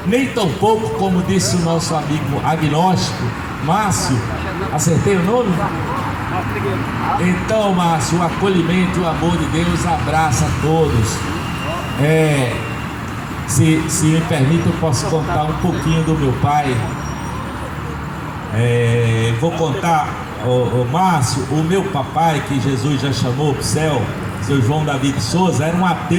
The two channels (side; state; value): both; identical; correlation 1.00